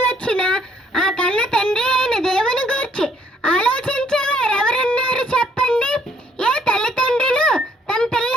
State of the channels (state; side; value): normal; both; correlation 0.65